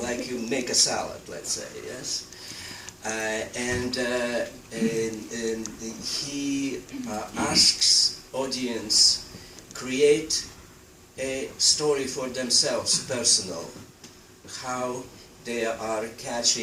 you make a salad, let's say, yes? And he asks audience create a story for themselves, personal, how they are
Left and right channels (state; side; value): identical; both; correlation 1.00